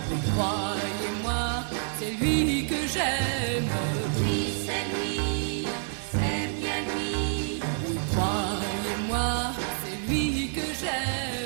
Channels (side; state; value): left; silent; digital silence